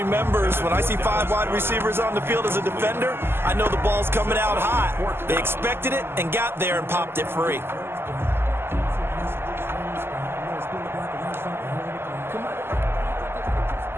when I see 5 wide receivers on the field as a defender, I know the ball's coming out hot. They expected it and got there and popped it free.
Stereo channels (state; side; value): late; left; 0.11 ms